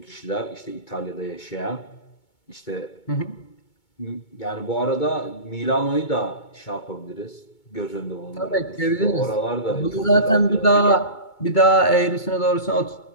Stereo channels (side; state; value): right; late; 2.2 ms